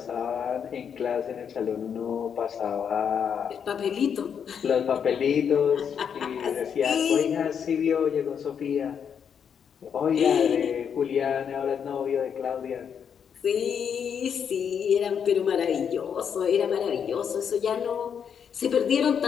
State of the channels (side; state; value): right; quieter; 7.5 dB